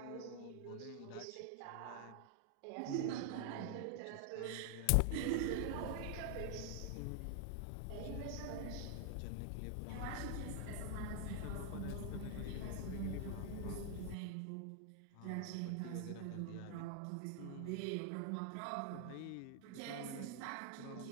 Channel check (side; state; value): both; different; correlation 0.00